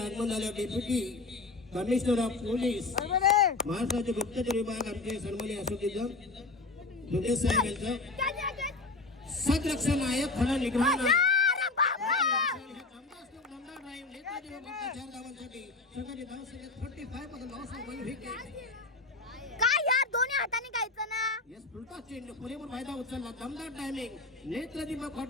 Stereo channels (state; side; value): quieter; right; 3.5 dB